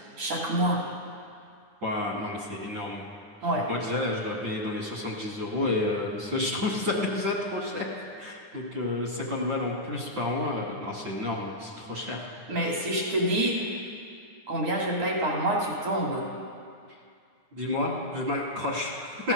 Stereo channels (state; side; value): late; left; 9.7 ms